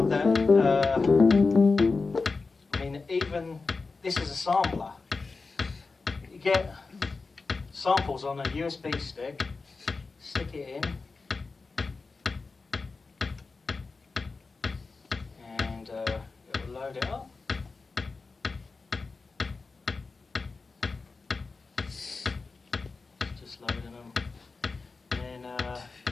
that I mean, even this is a sampler. You get samples on a USB stick, stick it in, and it will load it up. Just loading them. Then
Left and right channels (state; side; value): quieter; right; 4.1 dB